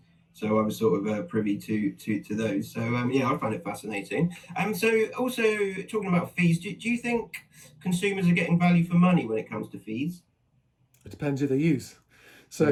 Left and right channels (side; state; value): both; identical; correlation 1.00